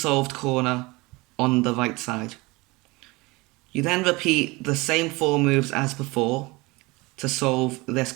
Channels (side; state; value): left; quieter; 23.6 dB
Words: corner on the right side. You then repeat the same 4 moves as before to solve this